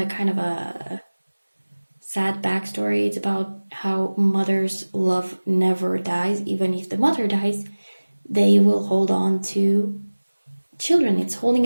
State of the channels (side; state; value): both; inverted; correlation -1.00